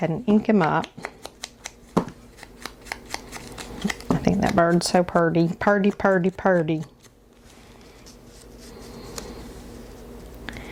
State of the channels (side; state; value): both; identical; correlation 1.00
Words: and ink him up. I think that bird's so purty. Purty, purty, purty.